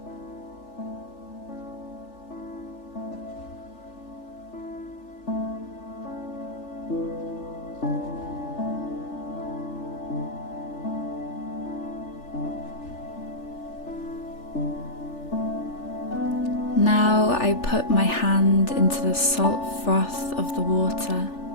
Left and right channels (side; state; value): right; late; 3.4 ms